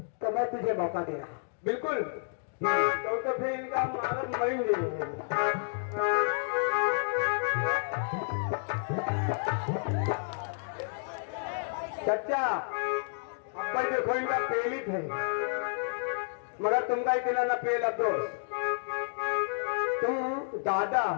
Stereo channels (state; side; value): silent; right; digital silence